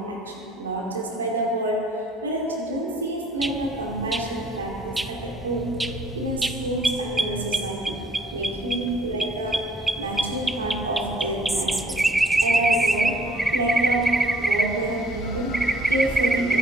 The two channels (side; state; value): both; normal; correlation 0.59